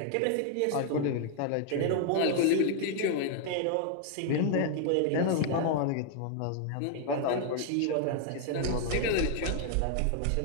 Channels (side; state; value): both; different; correlation 0.00